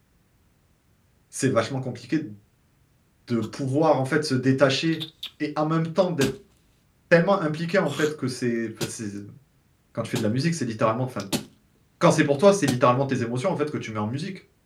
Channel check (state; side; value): identical; both; correlation 1.00